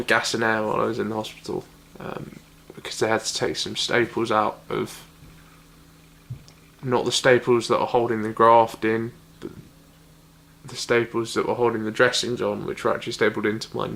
gas and air while I was in the hospital, because they had to take some staples out of, not the staples that are holding the graft in, but the staples that were holding the dressings on, which were actually stapled into my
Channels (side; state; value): both; identical; correlation 1.00